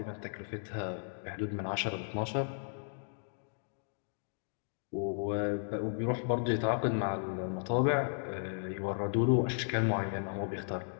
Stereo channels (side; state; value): right; silent; digital silence